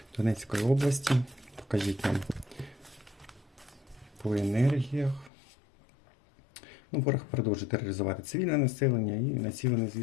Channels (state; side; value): drops out; right; at 5.3 s